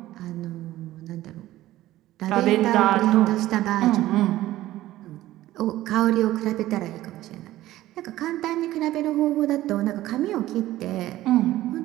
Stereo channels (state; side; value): quieter; left; 15.3 dB